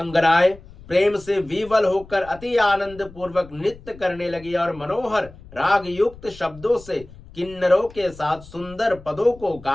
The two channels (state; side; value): noise; left; rumble, 20 dB below the sound